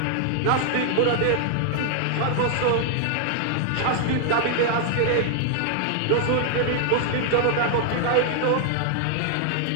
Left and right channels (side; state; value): both; different; correlation 0.00